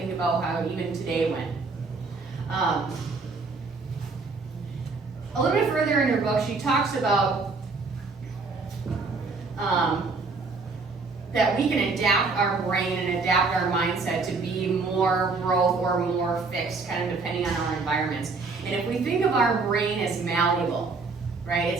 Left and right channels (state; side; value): quieter; left; 4.1 dB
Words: about how even today went. A little bit further in her book, she talks about that we can adapt our brain and adapt our mindset to be more growth or more fixed, kind of depending on our environments. And if we think of our brain as malleable, right,